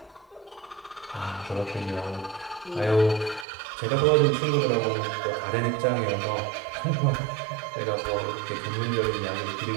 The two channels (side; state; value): left; drops out; at 3.5 s